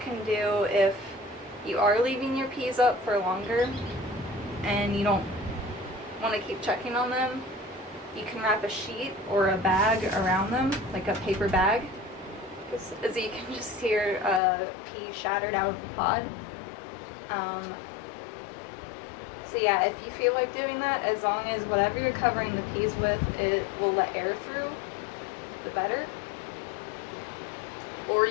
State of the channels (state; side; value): drops out; right; at 14.4 s